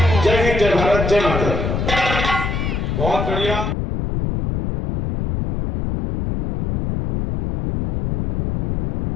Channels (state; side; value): noise; left; rumble, 2 dB below the sound